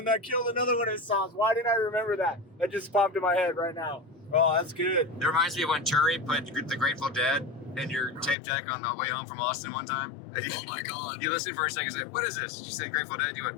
I killed another one of his songs. Why didn't I remember that? That just popped in my head right now. Oh, that's good. It reminds me of when Turi put the Grateful Dead in your tape deck on the way home from Austin one time. Oh my God. You listened for a second and said, what is this? She said Grateful Dead. You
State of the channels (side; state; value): right; drops out; at 8.3 s